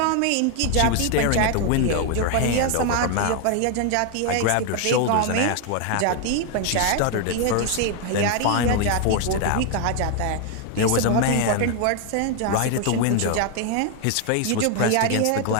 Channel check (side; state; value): both; different; correlation 0.01